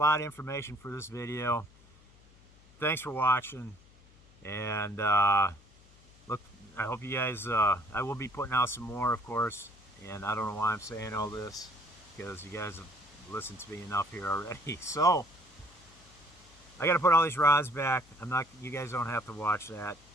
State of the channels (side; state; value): left; noise; hum, 26 dB below the sound